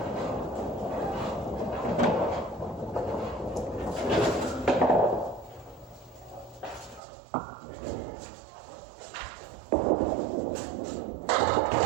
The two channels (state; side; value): drops out; left; at 7.0 s